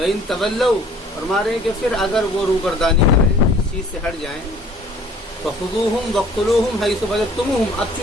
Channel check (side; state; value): both; normal; correlation 0.53